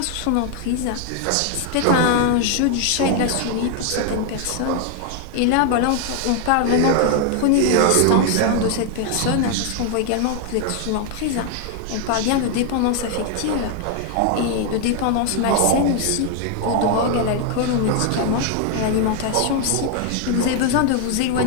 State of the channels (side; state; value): both; different; correlation 0.00